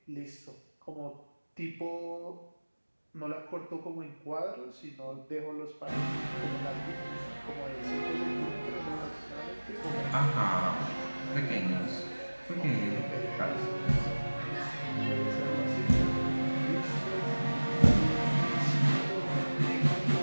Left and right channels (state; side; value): inverted; both; correlation -1.00